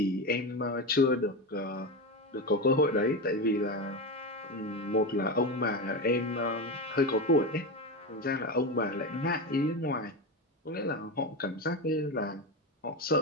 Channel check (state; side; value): normal; both; correlation 0.18